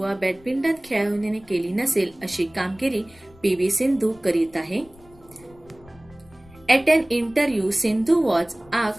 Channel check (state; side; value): noise; left; rumble, 25 dB below the sound